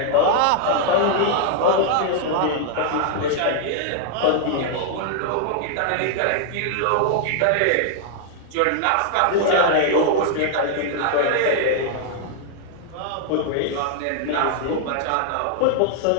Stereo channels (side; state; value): both; different; correlation 0.00